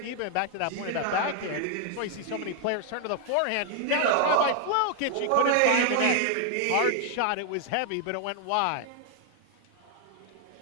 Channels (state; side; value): different; both; correlation 0.00